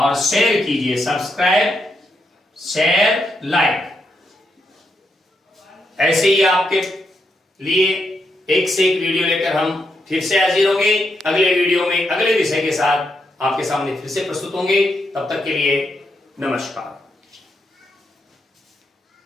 शेयर कीजिए। सब्सक्राइब, शेयर, लाइक, ऐसे ही आपके लिए एक से एक वीडियो लेकर हम फिर से हाजिर होंगे। अगले वीडियो में अगले विषय के साथ आपके सामने फिर से प्रस्तुत होंगे। तब तक के लिए नमस्कार।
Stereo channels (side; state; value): both; normal; correlation 0.81